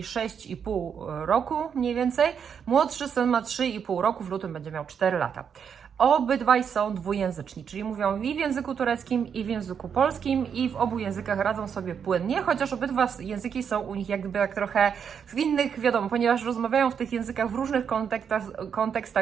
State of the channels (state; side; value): quieter; left; 7.3 dB